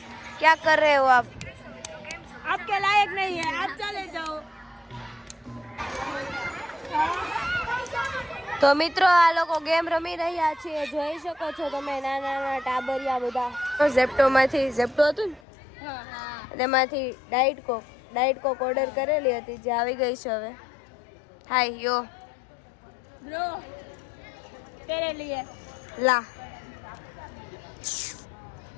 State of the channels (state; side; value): drops out; right; at 15.4 s